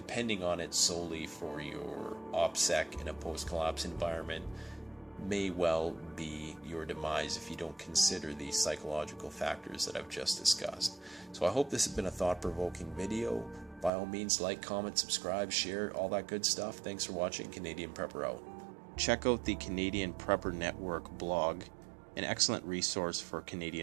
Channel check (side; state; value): left; drops out; at 13.9 s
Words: on it solely for your OPSEC in a post-collapse environment may well be your demise if you don't consider the psychological factors that I've just discussed. So I hope this has been a thought-provoking video. By all means, like, comment, subscribe, share, all that good stuff. Thanks for watching. Canadian Prepper out. Check out the Canadian Prepper Network blog, an excellent resource for